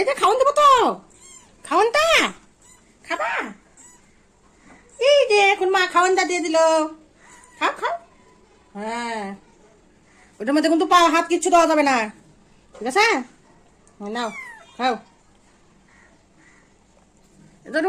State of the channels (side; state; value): both; identical; correlation 1.00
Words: যে খাওয়ান দেবো তো, খাওয়ানটা খাবা। এই যে এখন মা খাওয়ানটা দিয়ে দিল, খাও খাও। হ্যাঁ, ওটার মধ্যে কিন্তু পা হাত কিচ্ছু দেওয়া যাবে না, ঠিক আছে? নাও খাও। এটার